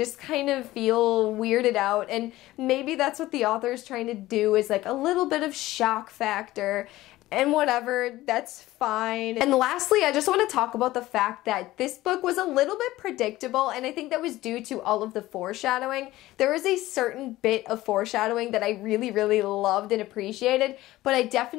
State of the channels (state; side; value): quieter; right; 16.8 dB